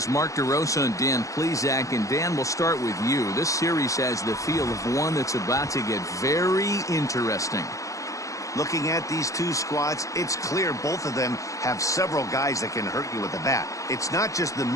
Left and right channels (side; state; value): right; late; 0.16 ms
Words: Mark DeRosa and Dan Plesac. And Dan, we'll start with you. This series has the feel of one that's about to get very interesting. Looking at these two squads, it's clear both of them have several guys that can hurt you with the bat. It's not just the